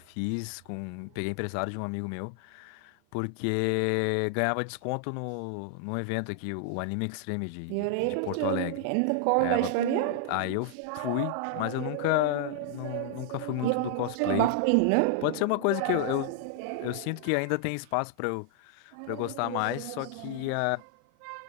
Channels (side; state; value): both; different; correlation 0.00